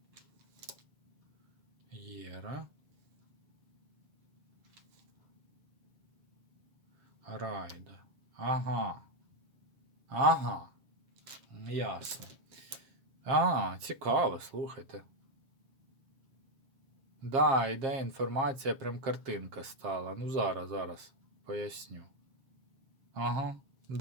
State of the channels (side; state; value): left; late; 7.5 ms